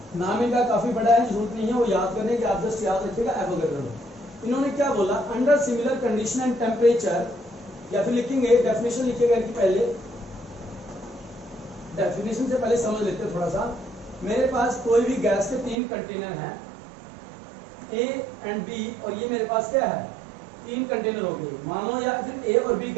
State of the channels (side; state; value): left; drops out; at 15.8 s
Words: नाम इनका काफी बड़ा है, जरूरत नहीं है वो याद करने की, आप जस्ट याद रखिएगा एवोगैड्रो लॉ। इन्होंने क्या बोला, under similar condition and temperature, या फिर लिखेंगे डेफिनेशन लिखिएगा कि पहले, डेफिनेशन से पहले समझ लेते हैं थोड़ा सा। मेरे पास कोई भी गैस के तीन कंटेनर हैं, ए एंड बी, और ये मेरे पास क्या है, तीन कंटेनर हो गए मान लो, या फिर ए और बी